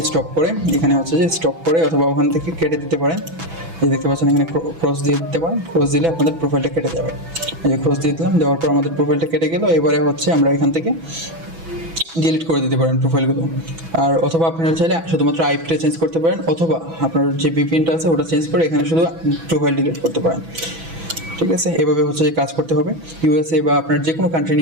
স্টপ করে এখানে হচ্ছে যে স্টপ করে অথবা ওখান থেকে কেটে দিতে পারেন। এই দেখতে পাচ্ছেন এখানে ক্রস দিয়ে দিতে পারেন। ক্রস দিলে আপনাদের প্রোফাইলটা কেটে যাবে। এই যে ক্রস দিয়ে দিলাম, দেওয়ার পর আমাদের প্রোফাইলটা কেটে গেল। এবারে হচ্ছে আমরা এখান থেকে ডিলিট করে দিতে পারেন প্রোফাইলগুলো। আর অথবা আপনারা চাইলে শুধুমাত্র আইপিটা চেঞ্জ করতে পারেন, অথবা আপনার যে ভিপিএনটা আছে ওটা চেঞ্জ করে এখানে শুধু প্রোফাইল ডিলিট করতে পারেন। ঠিক আছে, এভাবে হচ্ছে যে কাজ করতে হবে। ইউএসএ বা আপনার যে কোনো কান্ট্রি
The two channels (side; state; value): left; late; 6.1 ms